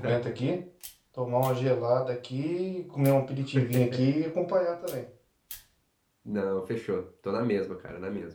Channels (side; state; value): both; identical; correlation 1.00